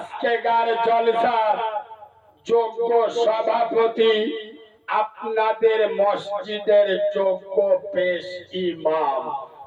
জলসার যোগ্য সভাপতি, আপনাদের মসজিদের যোগ্য পেশ ইমাম,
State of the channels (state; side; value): identical; both; correlation 1.00